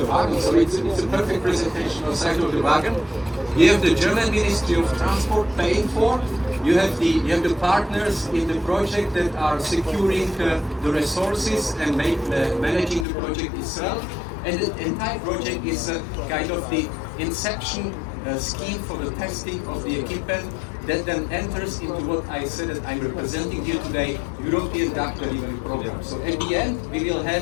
wagon. So it's a perfect presentation on the side of the wagon. You have the German Ministry of Transport paying for. You have the partners in the project that are securing the resources and managing the project itself. And the entire project is kind of the inception scheme for the testing of the equipment that then enters into what I said that I'm representing here today, European DAC delivery program. So at the end, we will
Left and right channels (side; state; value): right; drops out; at 13.1 s